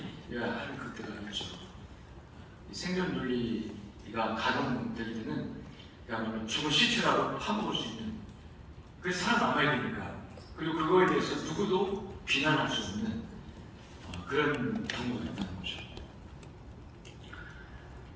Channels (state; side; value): identical; both; correlation 1.00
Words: 하는 그때가 있죠. 생존 논리가 가동될 때는 그야말로 죽은 시체라도 파먹을 수 있는, 그래서 살아남아야 되니까, 그리고 그거에 대해서 누구도 비난할 수 없는 그런 경우가 있다는 거죠.